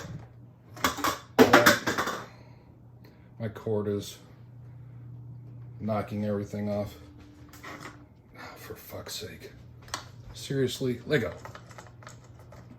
that my cord is knocking everything off. Oh, for fuck's sake. Seriously, Lego.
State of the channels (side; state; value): both; identical; correlation 1.00